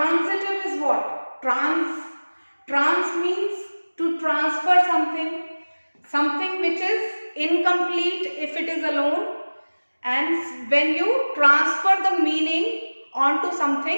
is what? Trans means to transfer something. Something which is incomplete if it is alone. And when you transfer the meaning onto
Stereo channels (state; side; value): inverted; both; correlation -1.00